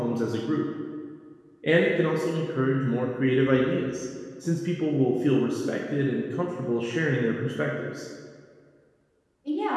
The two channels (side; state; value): both; identical; correlation 1.00